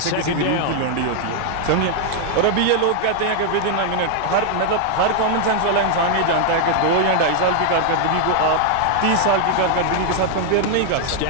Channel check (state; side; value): different; both; correlation 0.00